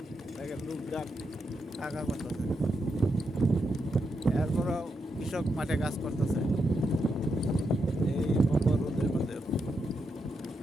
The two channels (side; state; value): both; normal; correlation 0.83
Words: দেখেন লোকজন টাকা করতেছে, এরপরও কৃষক মাঠে কাজ করতেছে এই প্রখর রোদের মধ্যে।